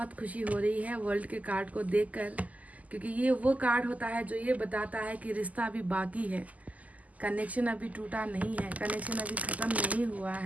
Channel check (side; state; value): left; late; 0.075 ms